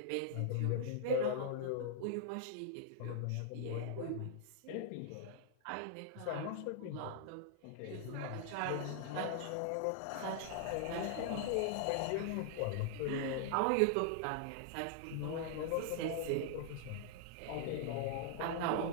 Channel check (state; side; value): different; both; correlation -0.01